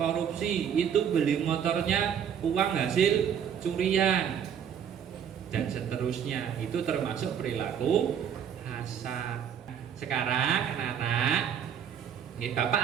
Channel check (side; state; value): left; quieter; 8.4 dB